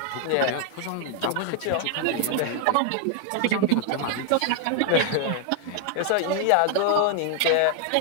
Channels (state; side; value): different; both; correlation 0.00